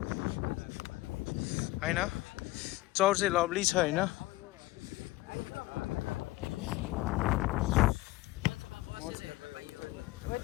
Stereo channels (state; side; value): quieter; right; 18.7 dB